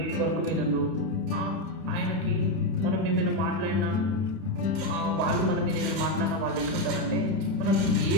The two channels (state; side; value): late; left; 32 ms